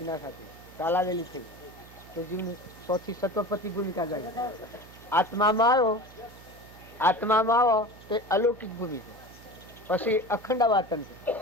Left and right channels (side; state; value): right; noise; hum, 20 dB below the sound